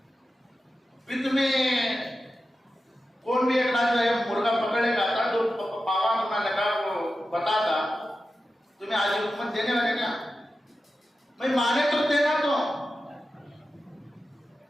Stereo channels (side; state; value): both; normal; correlation 0.92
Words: بھی تمہیں کون بھی ایک جو ہے مرغا پکڑے گا تھا 2 پاوا تمہیں لگا وہ بتاتا، تمہیں آج حکومت دینے والے کیا، میں مانے تو دینا تو